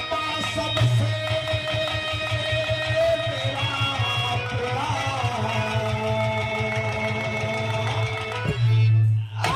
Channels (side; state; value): both; identical; correlation 1.00